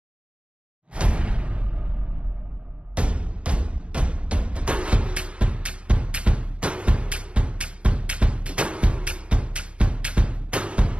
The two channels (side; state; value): left; late; 0.059 ms